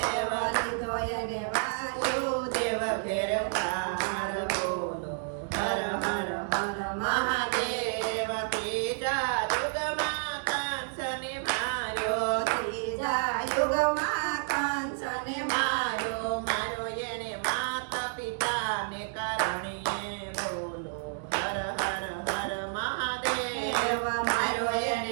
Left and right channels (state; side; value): silent; left; digital silence